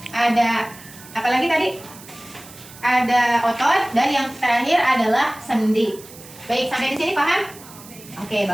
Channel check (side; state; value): right; noise; hiss, 19 dB below the sound